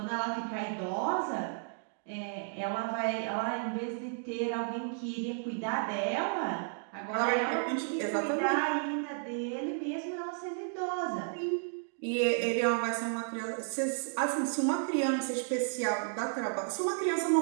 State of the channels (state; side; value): silent; left; digital silence